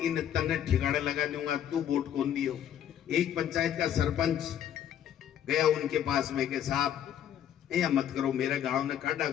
इन तन्ने ठिकाने लगा दूंगा, तू वोट कौन दियो। एक पंचायत का सरपंच गया उनके पास में के साहब ये मत करो, मेरे गांव ने काटा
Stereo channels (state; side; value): quieter; right; 10.1 dB